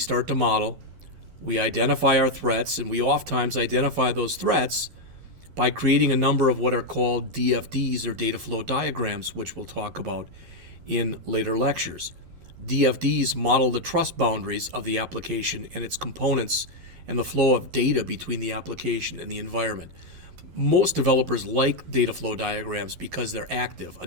to model. We identify our threats, and we oftentimes identify those threats by creating a number of what are called DFDs, or data flow diagrams, which we'll talk about in later lectures. DFDs model the trust boundaries of the application and its components and the flow of data between the application and the environment. Most developers like data flow diagrams because they're active.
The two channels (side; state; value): left; late; 11 ms